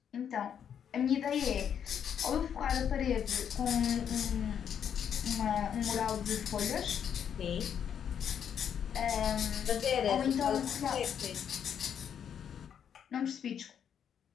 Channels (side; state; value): right; quieter; 8.4 dB